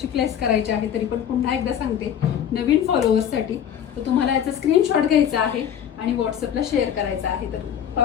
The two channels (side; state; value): right; quieter; 9.2 dB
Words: प्लेस करायची आहे, तरी पण पुन्हा एकदा सांगते नवीन फॉलोअर्ससाठी, तर तुम्हाला याचा स्क्रीनशॉट घ्यायचा आहे आणि व्हॉट्सअपला शेअर करायचा आहे. तर